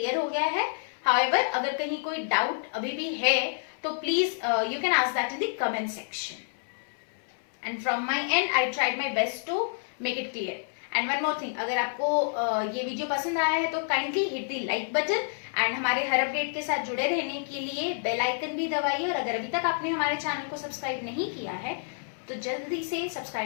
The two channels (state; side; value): silent; right; 59 dB below the other